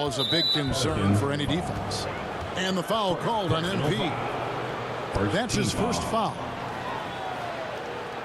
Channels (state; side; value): identical; both; correlation 1.00